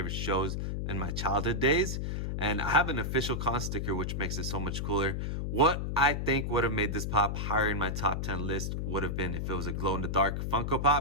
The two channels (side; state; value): left; noise; hum, 2 dB below the sound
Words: shows in my childhood days. And I have an official con sticker, which makes it so much cooler. What I think would have made this pop higher in my top 10 list would have been if it was a glow-in-the-dark Funko